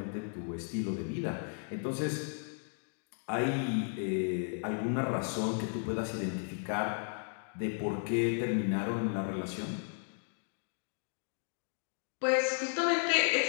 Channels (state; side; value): silent; right; 55 dB below the other